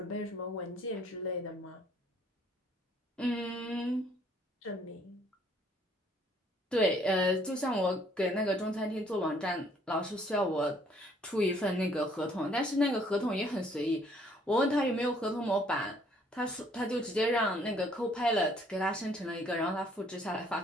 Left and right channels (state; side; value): normal; both; correlation 0.62